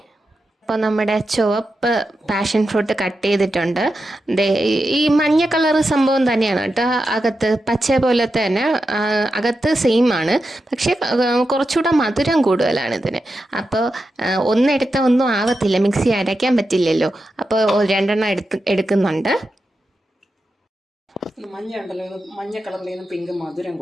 അപ്പോൾ നമ്മുടെ ചുവപ്പ് പാഷൻ ഫ്രൂട്ട് കട്ട് ചെയ്തിട്ടുണ്ട്. ഈ മഞ്ഞ കളർ സംഭവം തന്നെയാണ് കേട്ടോ, അകത്ത് പച്ച പോലത്തെ തന്നെ, അകത്ത് സെയിം ആണ്. പക്ഷേ കുറച്ചുകൂടെ മധുരം കൂടുതലാണ് ഇതിന്. അപ്പോൾ ഒന്നെടുത്ത ഒന്നും ആവത്തില്ല, മിക്സി അരയ്ക്കാൻ പറ്റില്ലല്ലോ. അപ്പോൾ 2 എടുക്കുന്നുണ്ട്. മഞ്ഞ ഉണ്ടല്ലോ, മഞ്ഞ കളറിലേന്ന് പിങ്ക് മധുരം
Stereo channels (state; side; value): normal; both; correlation 0.89